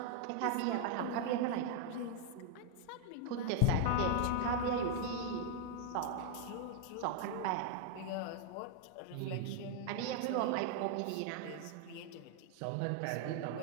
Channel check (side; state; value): both; different; correlation 0.00